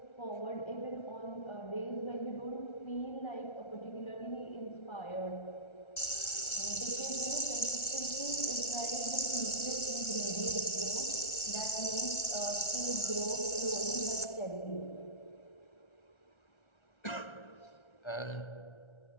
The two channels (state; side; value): late; right; 1.3 ms